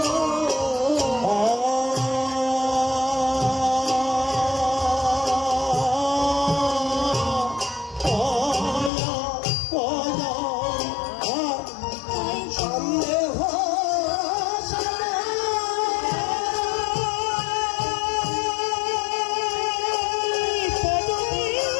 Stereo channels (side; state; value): right; drops out; at 8.9 s